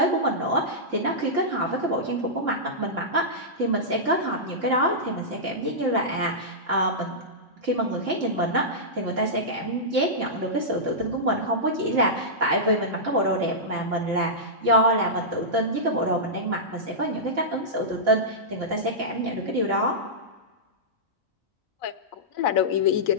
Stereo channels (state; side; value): normal; both; correlation -0.13